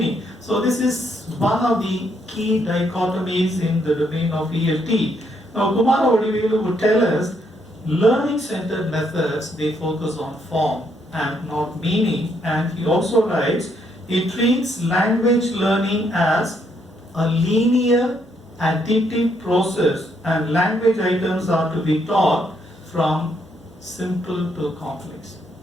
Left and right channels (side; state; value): both; normal; correlation 0.73